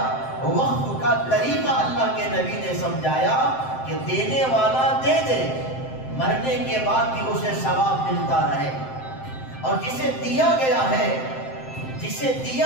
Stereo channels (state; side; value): late; right; 7.7 ms